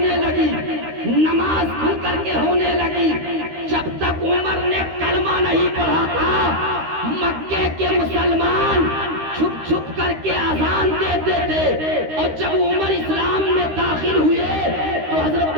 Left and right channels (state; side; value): late; left; 13 ms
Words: لگی، نماز کھل کر کے ہونے لگی۔ جب تک عمر نے کلمہ نہیں پڑھا تھا مکے کے مسلمان چھپ چھپ کر کے اذان دیتے تھے، اور جب عمر اسلام میں داخل ہوئے تو حضرت